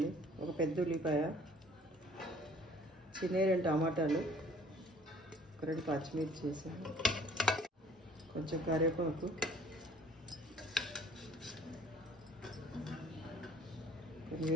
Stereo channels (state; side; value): normal; both; correlation 0.55